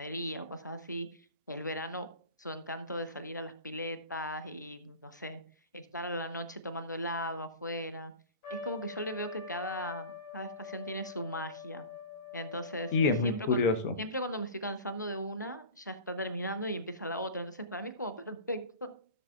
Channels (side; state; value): both; inverted; correlation -0.35